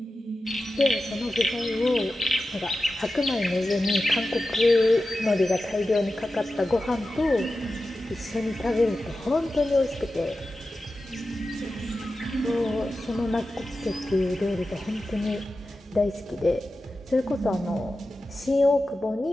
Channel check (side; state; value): both; normal; correlation 0.93